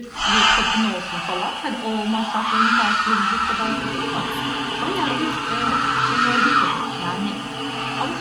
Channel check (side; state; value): both; identical; correlation 1.00